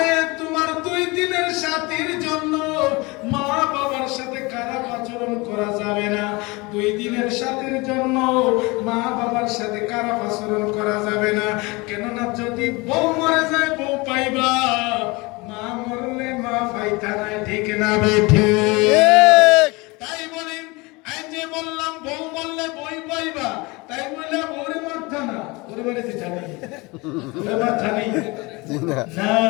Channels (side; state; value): right; quieter; 24.9 dB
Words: তোমার 2 দিনের সাথীর জন্য মা বাবার সাথে খারাপ আচরণ করা যাবে না। 2 দিনের সাথীর জন্য মা বাবার সাথে খারাপ আচরণ করা যাবে না। কেননা যদি বউ মরে যায় বউ পাইবা, মা মরলে মা পাইতা নাই, ঠিক না বেঠি? তাই বলি, এই যে বললাম বউ মরলে বই পাইবা, তাই বললে বউরে মারতা না, ওরে মারিতে জানি ওরে মারতা নেই না।